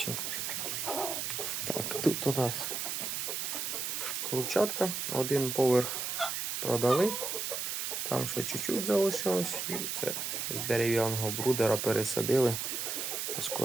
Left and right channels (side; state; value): right; noise; hiss, 2 dB below the sound